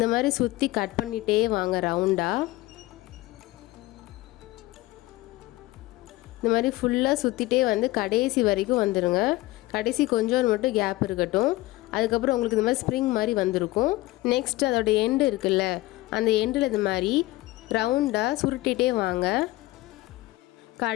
மாதிரி சுற்றி கட் பண்ணிகிட்டே வாங்க ரவுண்டாக. இந்த மாதிரி ஃபுல்லாக சுற்றிட்டே வந்து கடைசி வரைக்கும் வந்துடுங்க. கடைசி கொஞ்சம் மட்டும் கேப் இருக்கட்டும். அதுக்கப்புறம் உங்களுக்கு இந்த மாதிரி ஸ்ப்ரிங் மாதிரி வந்திருக்கும். நெக்ஸ்ட் அதோட எண்டு இருக்குல்ல, அந்த எண்டில் இது மாதிரி ரவுண்டாக சுருட்டிகிட்டே வாங்க.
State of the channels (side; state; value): right; quieter; 18.9 dB